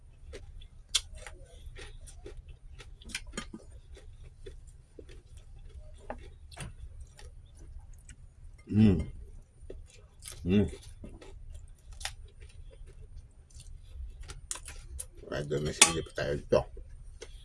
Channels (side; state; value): both; identical; correlation 1.00